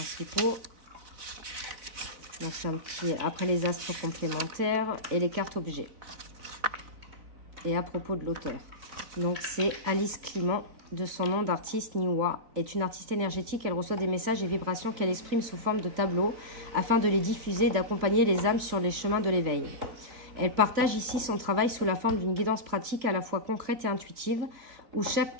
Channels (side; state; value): left; late; 4.0 ms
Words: Donc c'est un petit, après les astres complémentaires et les cartes objets. Et à propos de l'auteur. Donc c'est Alice Clément, de son nom d'artiste Niwa, est une artiste énergétique. Elle reçoit des messages et vibrations qu'elle exprime sous forme de tableaux afin de les diffuser et d'accompagner les âmes sur les chemins de l'éveil. Elle partage ici son travail sous la forme d'une guidance pratique à la fois concrète et intuitive, où chaque